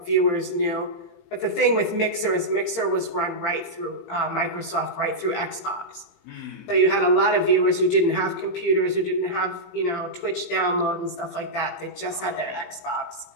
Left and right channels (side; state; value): right; late; 18 ms